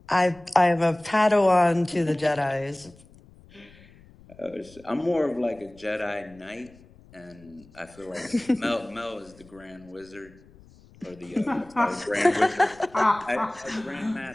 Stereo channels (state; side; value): noise; left; rumble, 25 dB below the sound